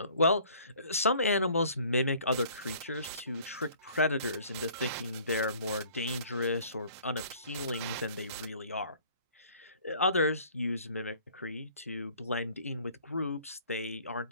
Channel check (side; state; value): both; inverted; correlation -0.54